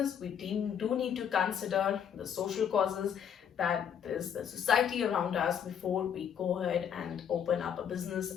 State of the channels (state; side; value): quieter; right; 8.4 dB